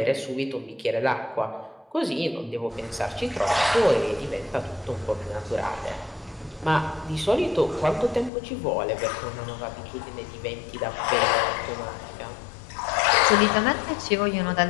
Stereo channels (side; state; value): right; drops out; at 8.3 s